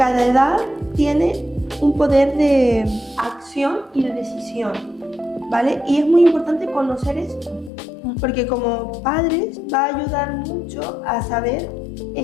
edad tiene un poder de acción y de decisión, ¿vale? Y es muy importante conocer esto, porque como padres va a ayudar mucho a saber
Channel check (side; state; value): right; drops out; at 7.7 s